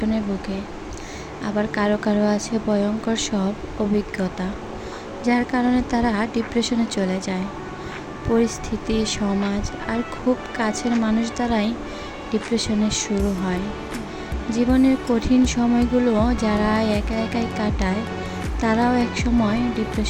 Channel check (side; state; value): both; identical; correlation 1.00